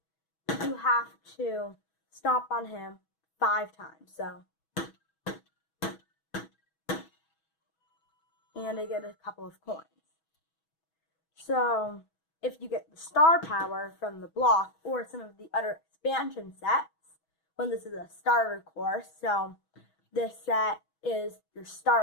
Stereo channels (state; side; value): late; right; 6.2 ms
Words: you have to stomp on him 5 times. So, and I get a couple of coins. So, if you get the star power from the block or some of the other expansion sets, when this is a starter course, so this set is your